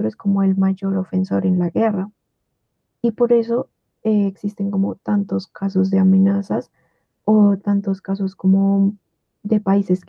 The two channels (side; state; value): both; identical; correlation 1.00